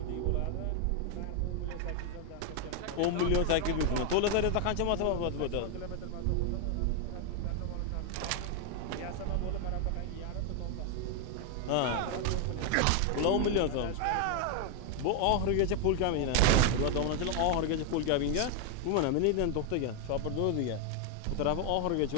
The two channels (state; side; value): different; both; correlation 0.01